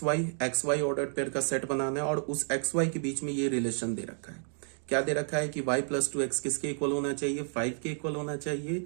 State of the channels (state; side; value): silent; left; 57 dB below the other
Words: y ordered pair का सेट बनाना है, और उस एक्स वाई के बीच में ये रिलेशन दे रखा है। क्या दे रखा है कि y प्लस 2x किसके इक्वल होना चाहिए, 5 के इक्वल होना चाहिए,